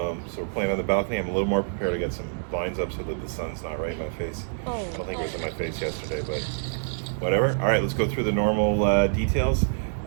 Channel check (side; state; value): left; silent; digital silence